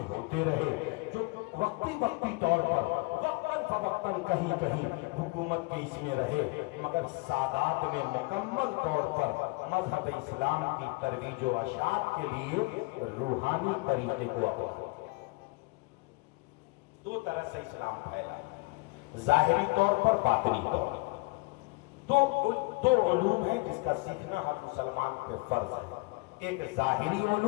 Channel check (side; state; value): right; quieter; 26.8 dB